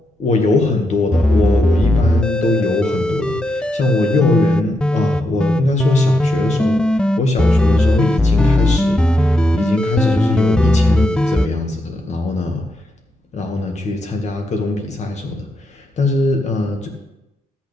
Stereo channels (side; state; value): both; normal; correlation 0.83